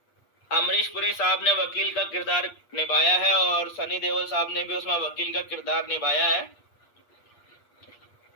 अमरीश पुरी साहब ने वकील का किरदार निभाया है और सनी देओल साहब ने भी उसमें वकील का किरदार निभाया है।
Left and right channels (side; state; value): right; late; 8.4 ms